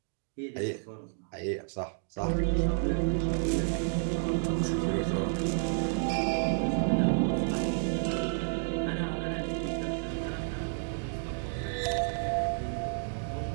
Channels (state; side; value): silent; left; digital silence